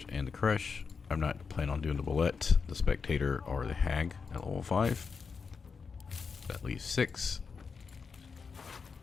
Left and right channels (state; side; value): quieter; right; 5.4 dB